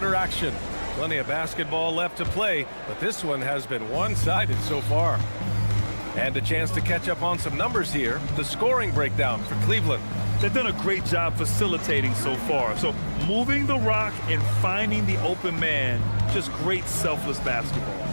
action. Plenty of basketball left to play, but this one has been one-sided so far. And a chance to catch up on some numbers here. The scoring breakdown for Cleveland. They've done a great job facilitating so far. So moving the rock and finding the open man, just great selfless basketball.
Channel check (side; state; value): both; inverted; correlation -1.00